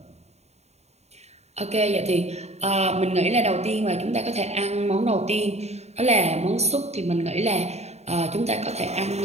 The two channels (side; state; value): left; late; 0.32 ms